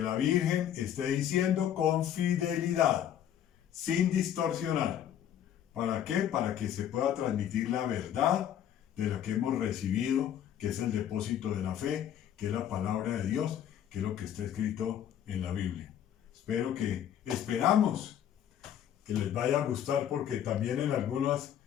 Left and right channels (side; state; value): right; quieter; 10.2 dB